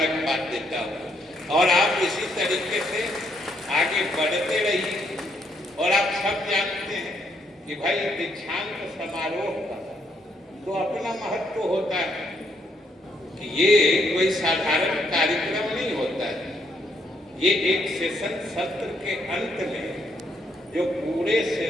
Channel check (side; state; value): both; normal; correlation 0.73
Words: देता हूँ। और आप इसी तरीके से आगे बढ़ते रहिए। और आप सब जानते हैं कि भाई दीक्षांत समारोह का तो अपना महत्व होता है कि ये कोई साधारण कार्यक्रम नहीं होता है। ये एक सेशन सत्र के अंत में जो पूरे